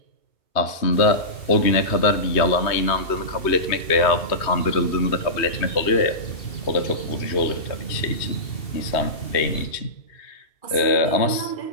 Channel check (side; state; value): right; late; 3.1 ms